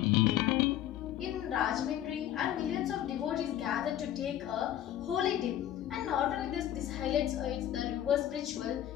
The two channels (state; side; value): quieter; right; 11.8 dB